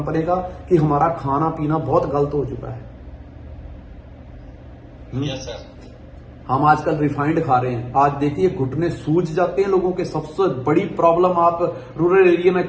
का, कि हमारा खाना पीना बहुत गलत हो चुका है। हम आजकल रिफाइंड खा रहे हैं। आज देखिए घुटने सूज जाते हैं लोगों के। सबसे बड़ी प्रॉब्लम, आप रूरल एरिया में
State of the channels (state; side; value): identical; both; correlation 1.00